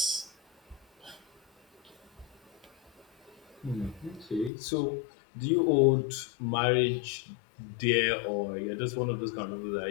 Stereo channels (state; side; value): drops out; right; at 4.5 s